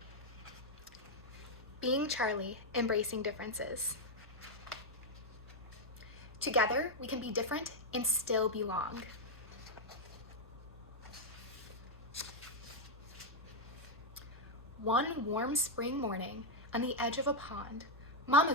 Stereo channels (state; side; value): normal; both; correlation -0.01